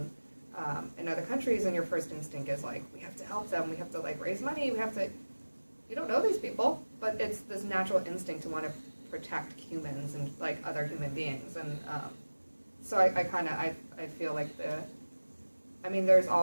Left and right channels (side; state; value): both; inverted; correlation -1.00